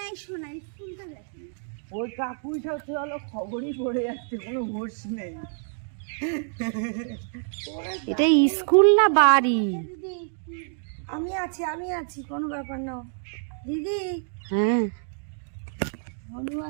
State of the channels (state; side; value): silent; left; 60 dB below the other